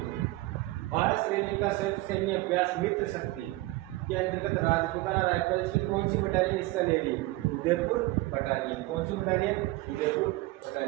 भारत श्रीलंका सैन्य अभ्यास मित्र शक्ति के अंतर्गत राजपूताना राइफल्स की कौन सी बटालियन हिस्सा ले रही है, उदयपुर बटालियन। कौन सी बटालियन, उदयपुर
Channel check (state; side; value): quieter; left; 19.7 dB